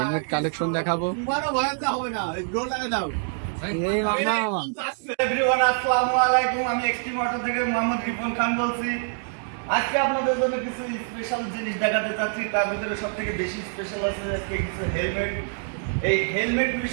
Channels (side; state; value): left; silent; 61 dB below the other